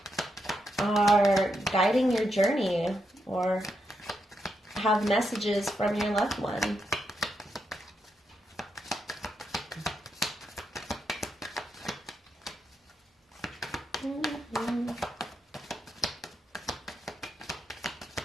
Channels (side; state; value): both; normal; correlation 0.82